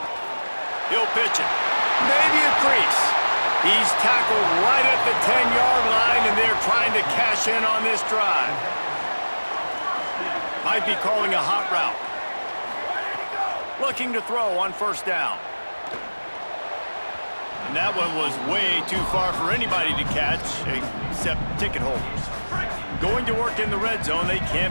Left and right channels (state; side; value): inverted; both; correlation -1.00